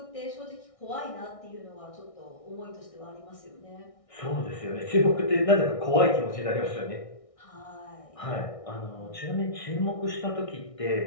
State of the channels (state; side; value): late; right; 1.6 ms